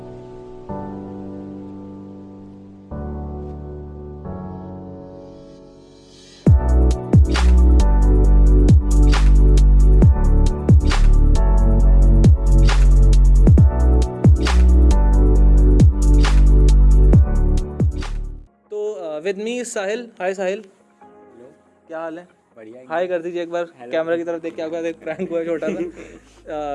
तो with me Sahil. Hi Sahil, hello. क्या हाल है? बढ़िया। हाय कर दीजिए एक बार कैमरा की तरफ देख के। आपका एक प्रैंक हुआ है छोटा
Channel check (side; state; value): both; identical; correlation 1.00